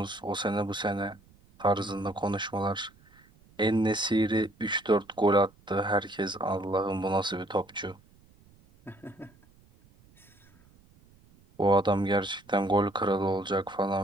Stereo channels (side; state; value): right; noise; rumble, 29 dB below the sound